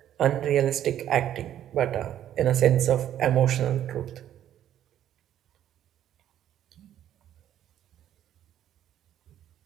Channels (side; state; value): left; quieter; 11.2 dB